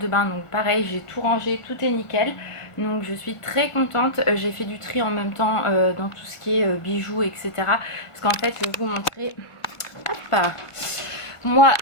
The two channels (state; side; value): late; right; 1.5 ms